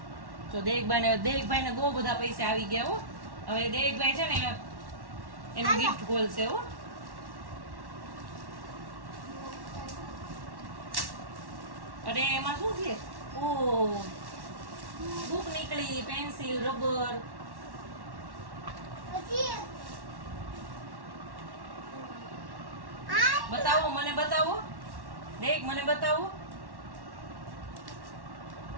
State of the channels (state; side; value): late; left; 1.1 ms